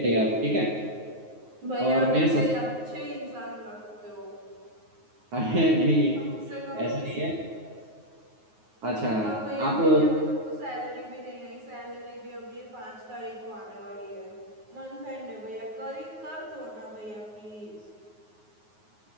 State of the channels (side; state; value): left; late; 9.4 ms